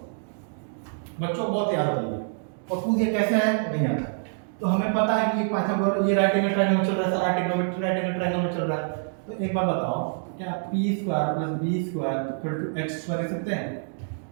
बच्चों को बहुत याद है और पूछ ये कैसे है नहीं आता। तो हमें पता है कि पाइथागोरस ये राइट एंगल ट्रायंगल में चल रहा है, सारा ट्रिग्नोमेट्री राइट एंगल ट्रायंगल में चल रहा है। तो एक बार बताओ, क्या p square plus b square equal to x square लिख सकते हैं?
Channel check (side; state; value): left; silent; digital silence